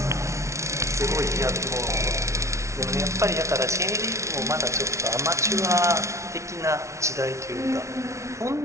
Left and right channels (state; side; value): late; left; 0.14 ms